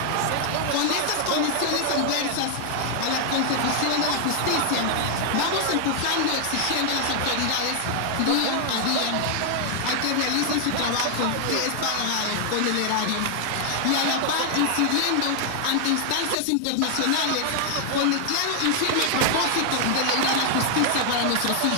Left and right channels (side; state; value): both; different; correlation 0.00